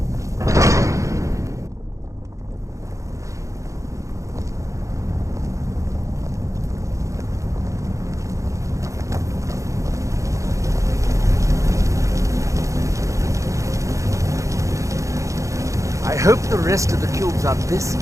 I hope the rest of the cubes are this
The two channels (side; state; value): left; late; 0.15 ms